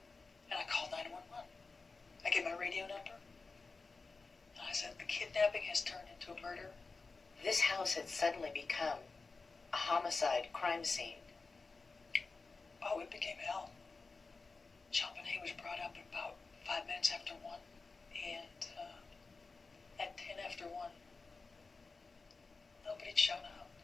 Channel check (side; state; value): right; quieter; 4.1 dB